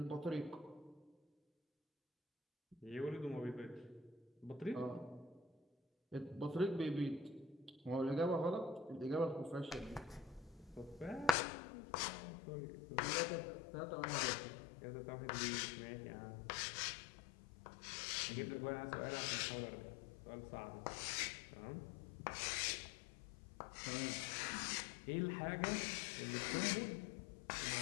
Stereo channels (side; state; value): right; drops out; at 11.4 s